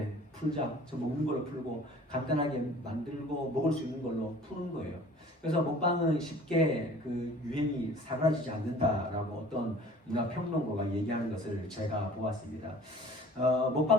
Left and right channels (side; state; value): both; normal; correlation 0.48